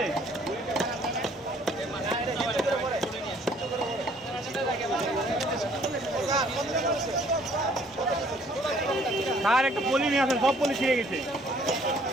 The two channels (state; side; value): normal; both; correlation 0.60